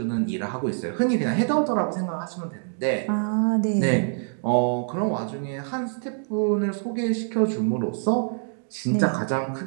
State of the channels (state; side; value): silent; left; digital silence